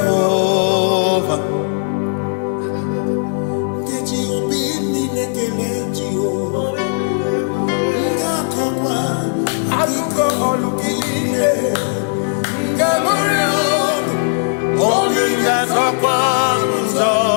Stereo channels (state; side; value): silent; right; digital silence